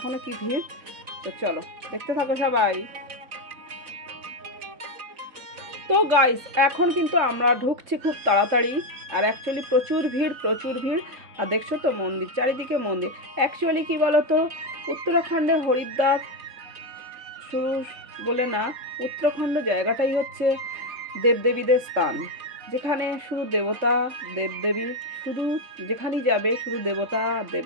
কি ভিড়। তো চলো দেখতে থাকো সবাই। তো গাইস এখন কিন্তু আমরা ঢুকছি খুব তাড়াতাড়ি। আর অ্যাকচুয়ালি প্রচুর ভিড়, প্রচুর ভিড়। আর দেখছো তো মন্দির, চারিদিকে মন্দির। অ্যাকচুয়ালি কী বলো তো, উত্তরাখণ্ডে হরিদ্বার শুরু বলে না, উত্তরাখণ্ড জায়গাটাই হচ্ছে দেবদেবীদের স্থান, যেখানে শুধু দেবতা দেবদেবী, শুধু যেখানেই যাবে শুধু দেবতা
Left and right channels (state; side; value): late; left; 3.7 ms